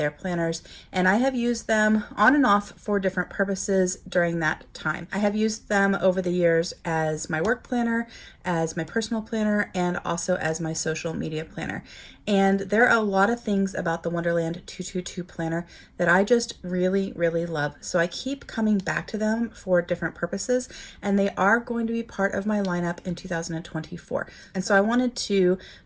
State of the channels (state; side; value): identical; both; correlation 1.00